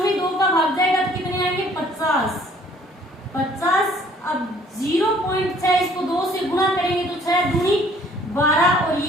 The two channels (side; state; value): both; normal; correlation 0.58